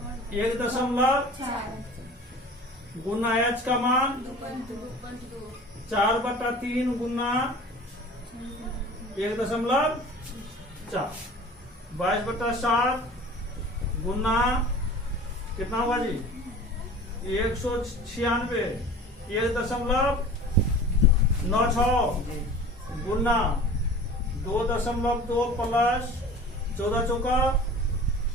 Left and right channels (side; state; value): both; normal; correlation 0.41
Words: 1.4 गुना एच का मान 4 बटा 3 गुना 1.4। 22 बटा 7 गुना कितना हुआ जी? 196 1.96 गुना 2.2 प्लस 14 चौका